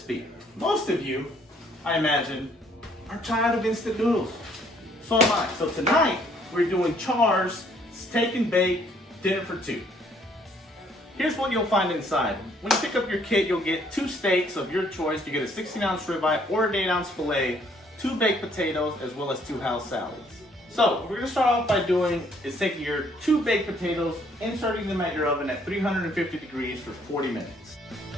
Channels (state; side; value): normal; both; correlation 0.64